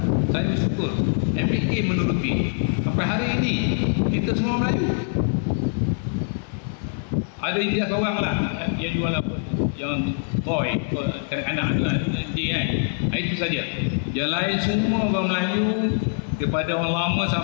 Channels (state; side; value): silent; right; digital silence